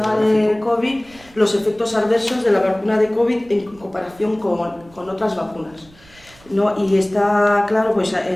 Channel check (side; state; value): right; noise; rumble, 26 dB below the sound